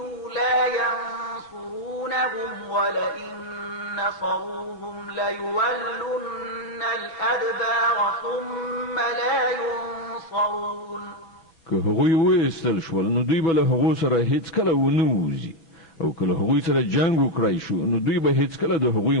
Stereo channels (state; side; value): late; right; 6.1 ms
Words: لا ينصرونهم ولئن نصروهم ليولن الأدبار ثم لا ينصرون. که هغوی وایستل شول نو دوی به له هغو سره هیڅ کله ونه وځي او که له هغوی سره جنګ وکړای شو نو دوی به هیڅ کله د هغوی